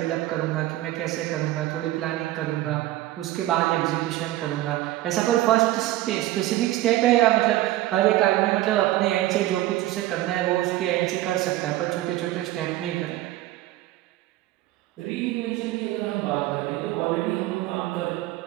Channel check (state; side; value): quieter; left; 15.8 dB